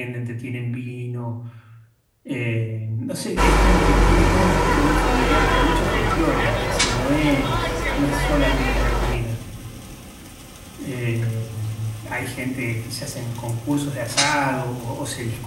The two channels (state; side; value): identical; both; correlation 1.00